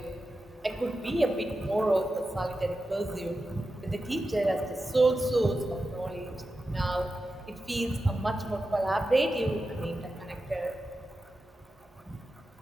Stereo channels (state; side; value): normal; both; correlation 0.91